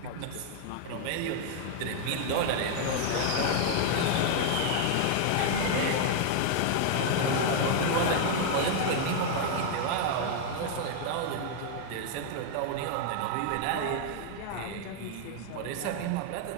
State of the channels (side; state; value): both; different; correlation 0.00